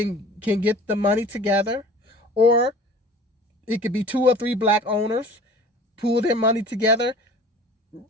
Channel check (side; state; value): both; normal; correlation 0.44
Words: the money together, or it could be 2 or 3 black owners pool their money together,